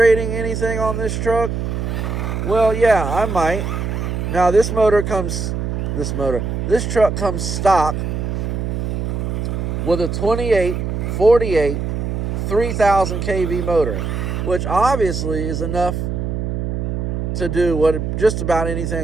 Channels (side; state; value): right; noise; hum, 2 dB below the sound